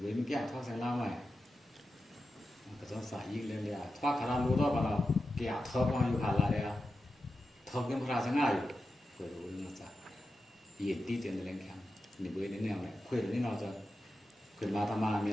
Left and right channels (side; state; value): both; normal; correlation 0.91